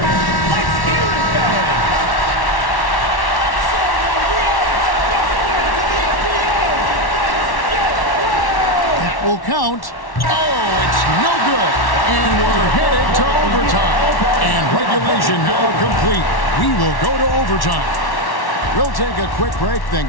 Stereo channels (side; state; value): right; late; 1.1 ms